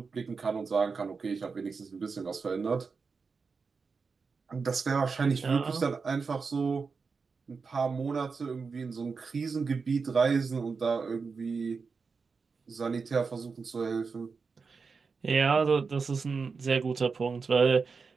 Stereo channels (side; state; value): left; quieter; 5.0 dB